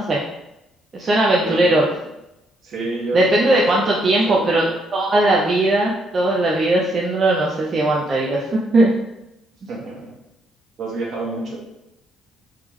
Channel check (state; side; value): normal; both; correlation 0.74